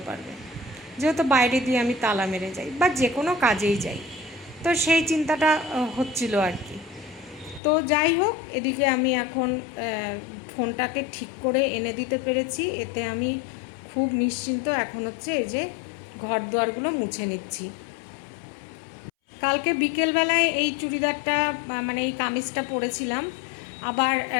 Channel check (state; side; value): drops out; right; at 7.6 s